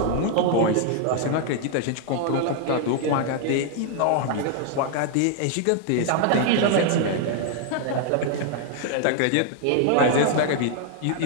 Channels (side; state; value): both; different; correlation 0.00